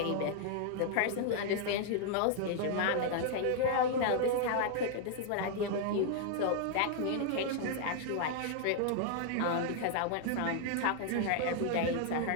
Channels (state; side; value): different; both; correlation -0.01